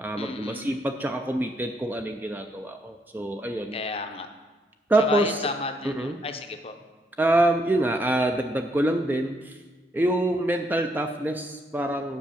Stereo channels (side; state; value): both; normal; correlation 0.74